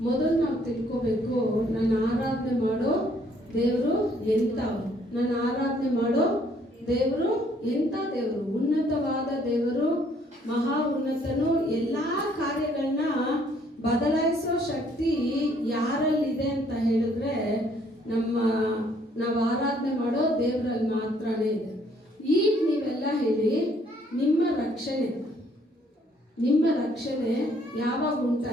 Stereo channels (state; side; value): normal; both; correlation 0.65